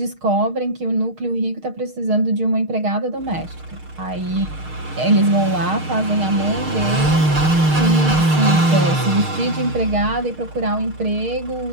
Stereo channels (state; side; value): late; left; 6.5 ms